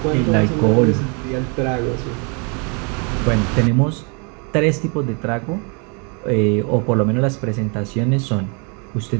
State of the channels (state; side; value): quieter; left; 34.7 dB